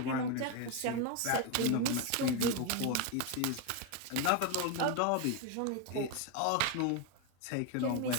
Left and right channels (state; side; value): different; both; correlation 0.02